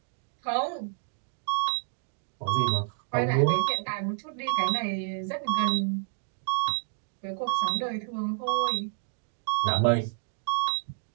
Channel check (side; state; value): left; silent; digital silence